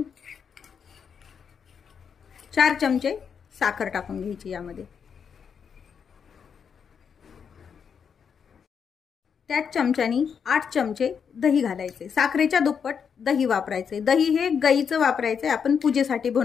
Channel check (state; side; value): quieter; right; 6.9 dB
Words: 4 चमचे साखर टाकून घ्यायची यामध्ये। त्याच चमच्यानी 8 चमचे दही घालायचे। साखरेच्या दुप्पट दही वापरायचे। दही हे गाईचं वापरायचे, आपण पूजेसाठी